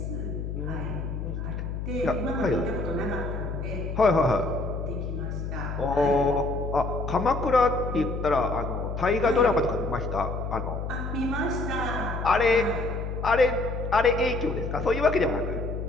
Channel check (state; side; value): noise; left; hum, 5 dB below the sound